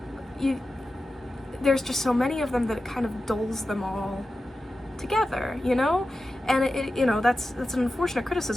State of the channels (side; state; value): both; normal; correlation 0.93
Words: there's just so many of them that it kind of dulls them all together, you know? And it you know, that's an unfortunate